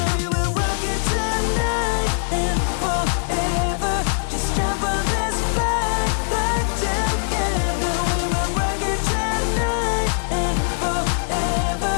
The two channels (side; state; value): right; silent; 57 dB below the other